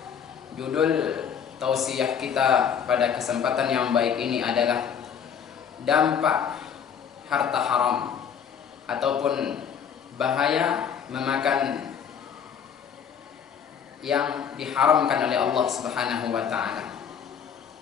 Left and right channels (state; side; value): quieter; right; 7.7 dB